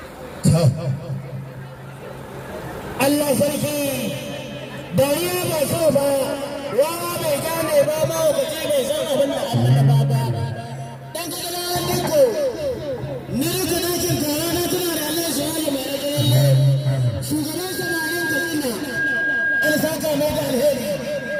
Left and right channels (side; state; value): both; identical; correlation 1.00